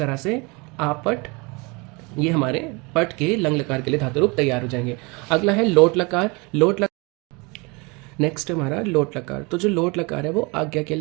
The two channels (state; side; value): quieter; left; 28.0 dB